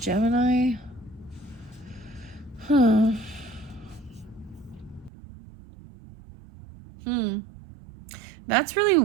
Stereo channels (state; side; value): drops out; left; at 5.1 s